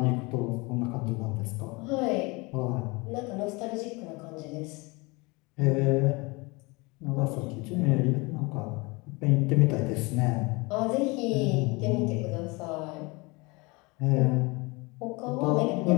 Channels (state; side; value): quieter; right; 26.1 dB